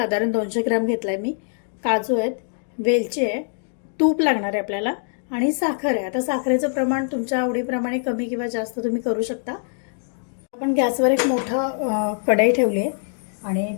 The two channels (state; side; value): silent; right; digital silence